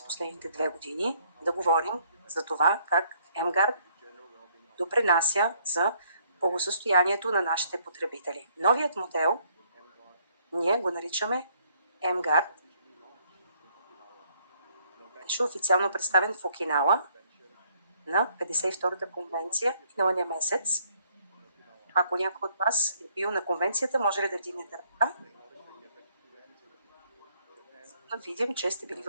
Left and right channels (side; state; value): both; inverted; correlation -0.66